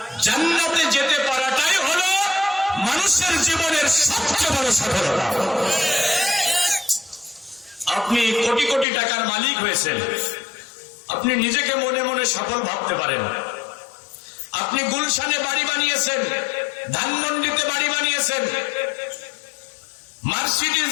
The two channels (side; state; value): right; drops out; at 8.8 s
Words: জান্নাতে যেতে পারাটাই হলো মানুষের জীবনের সবচেয়ে বড় সফলতা। আপনি কোটি কোটি টাকার মালিক হয়েছেন, আপনি নিজেকে মনে মনে সফল ভাবতে পারেন। আপনি গুলশানে বাড়ি বানিয়েছেন, ধানমন্ডিতে বাড়ি বানিয়েছেন, মার্সিডিজ